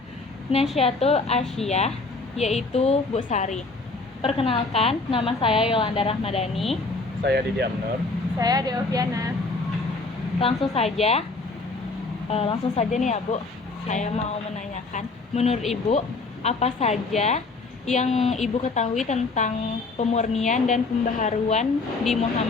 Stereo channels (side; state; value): right; quieter; 3.7 dB